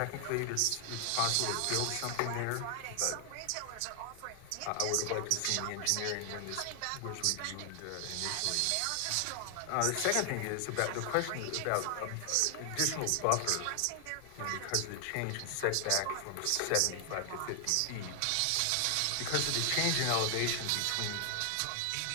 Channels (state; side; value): different; both; correlation 0.00